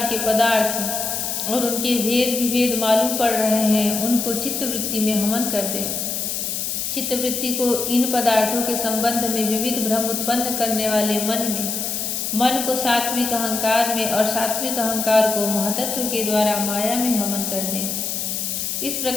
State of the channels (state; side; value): noise; left; hiss, 2 dB below the sound